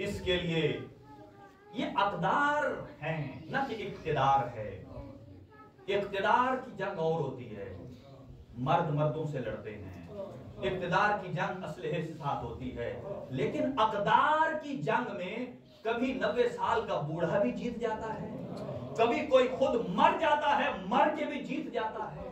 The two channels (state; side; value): identical; both; correlation 1.00